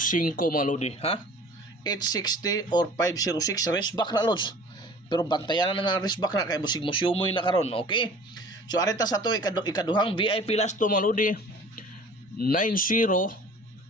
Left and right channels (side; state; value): both; normal; correlation 0.46